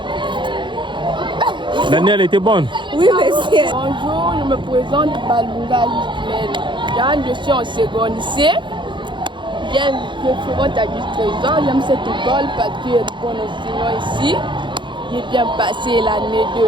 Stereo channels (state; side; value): late; left; 0.23 ms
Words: Daniel était bonne. Oui, monsieur. Bonjour, je me présente Balunga Lismel. Je suis en seconde C. Je fréquente à Gilles Trésor. J'aime cette école parce qu'il y a de bons enseignants ici. J'ai bien passé l'année